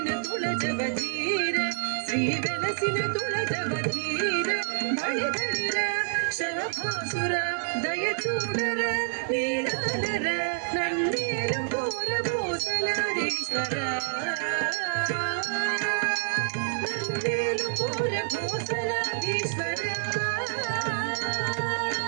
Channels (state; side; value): silent; left; digital silence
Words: తుళజవధీర శ్రీ వెలసిన తుళజవధీర బళిధరిర శరభాసుర దయచూడర నీలాలర నన్నేలు కోర భూసలారీశ్వర నన్నేలు కోర భూసలారీశ్వర